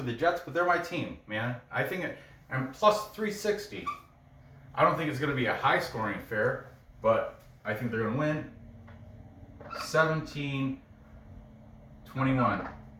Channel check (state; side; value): identical; both; correlation 1.00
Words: the Jets, but they're my team, man. I think I'm plus 360. I don't think it's going to be a high scoring affair, but I think they're going to win 17-21.